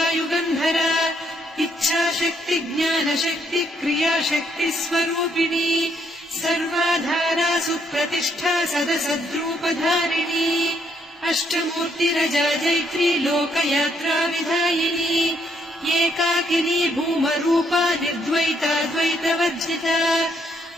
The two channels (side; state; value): both; normal; correlation 0.72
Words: युगन्धरा इच्छाशक्ति ज्ञानशक्ति क्रियाशक्ति स्वरूपिणी सर्वाधारा सुप्रतिष्ठा सदसद्रूपधारिणी अष्टमूर्तिरजा जैत्री लोकयात्रा विधायिनी एकाकिनी भूमरूपा निर्द्वैता द्वैतवर्जिता